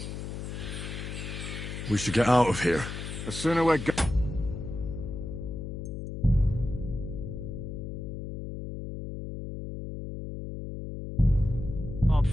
We should get out of here. The sooner we're go-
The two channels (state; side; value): noise; left; hum, 7 dB below the sound